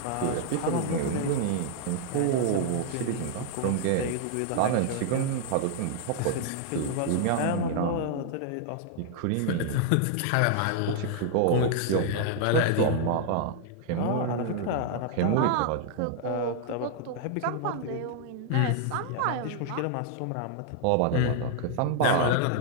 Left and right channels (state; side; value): different; both; correlation 0.00